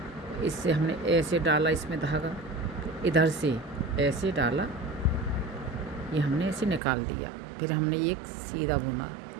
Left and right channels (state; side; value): drops out; left; at 6.8 s